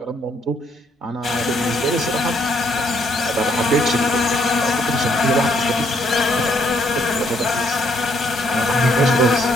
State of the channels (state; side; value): normal; both; correlation 0.70